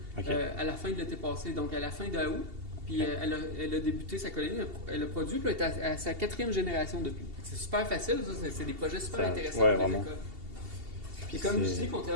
à la fin de l'été passé, donc à la fin d'août. Puis, elle a débuté sa colonie, elle a produit, puis elle est à sa 4e génération depuis. C'est super facile, ça, c'est des projets super intéressants pour les écoles. Puis comme je dis,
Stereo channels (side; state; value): left; late; 2.7 ms